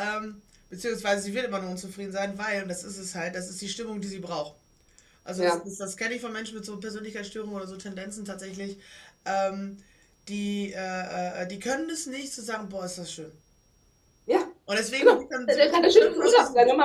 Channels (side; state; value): both; identical; correlation 1.00